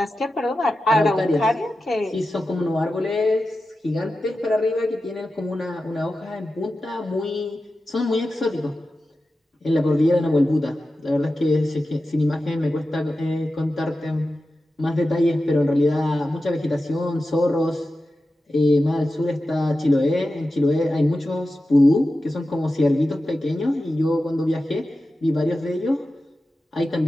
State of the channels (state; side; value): normal; both; correlation 0.93